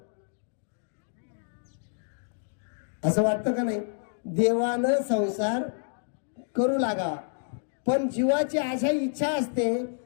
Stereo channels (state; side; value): silent; right; digital silence